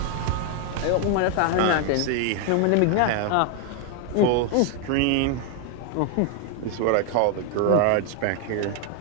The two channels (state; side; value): different; both; correlation 0.00